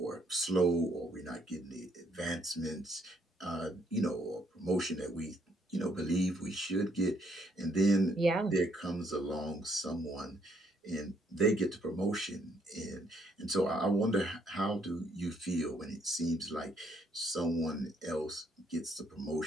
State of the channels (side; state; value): both; normal; correlation 0.71